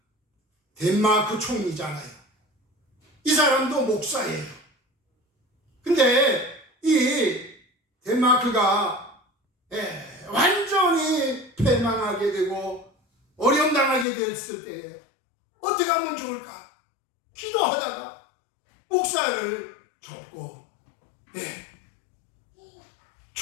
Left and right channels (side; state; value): right; drops out; at 14.1 s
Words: 덴마크 총리잖아요. 이 사람도 목사예요. 근데 이 덴마크가 완전히 패망하게 되고 어려움당하게 됐을 때에 어떻게 하면 좋을까? 기도하다가 목사를 접고